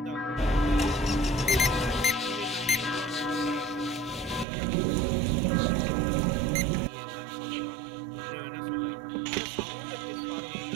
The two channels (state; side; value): drops out; left; at 4.5 s